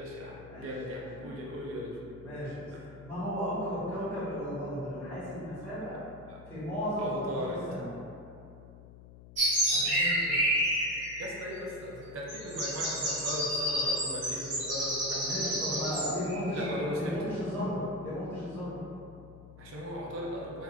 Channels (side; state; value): left; noise; hum, 18 dB below the sound